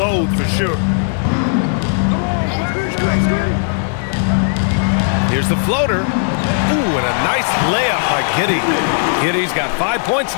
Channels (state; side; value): silent; right; digital silence